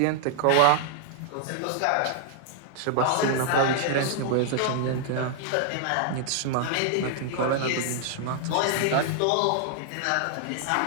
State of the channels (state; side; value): different; both; correlation -0.01